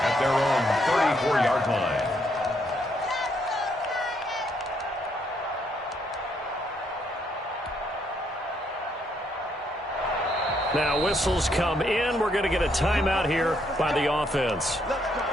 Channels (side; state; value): both; normal; correlation 0.73